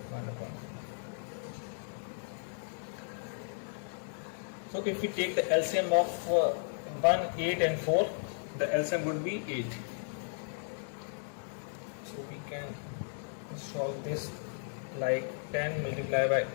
upon 4. So if we take the LCM of 1, 8 and 4, the LCM would be 8. So we can solve this like 10 multiplied by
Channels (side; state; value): right; silent; digital silence